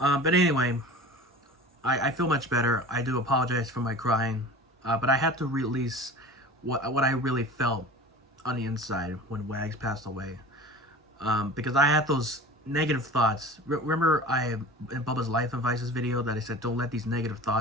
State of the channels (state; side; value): normal; both; correlation 0.38